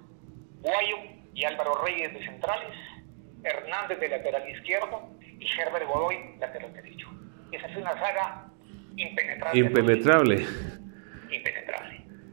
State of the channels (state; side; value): silent; left; digital silence